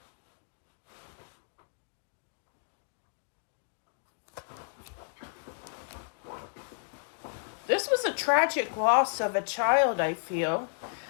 This was a tragic loss of a child, I feel.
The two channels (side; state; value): right; silent; digital silence